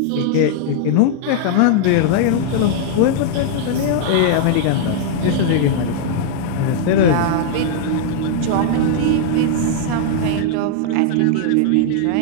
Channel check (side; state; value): both; different; correlation -0.01